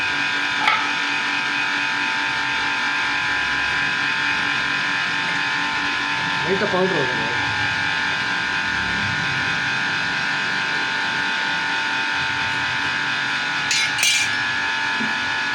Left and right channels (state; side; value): identical; both; correlation 1.00